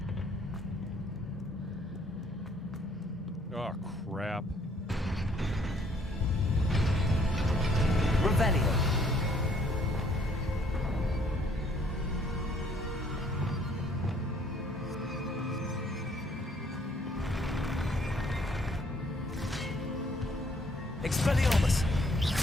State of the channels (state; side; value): normal; both; correlation 0.64